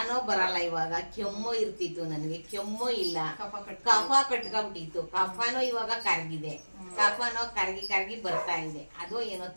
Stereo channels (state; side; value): inverted; both; correlation -1.00